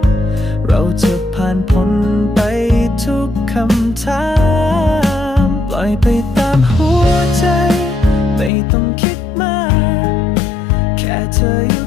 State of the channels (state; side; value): drops out; right; at 8.5 s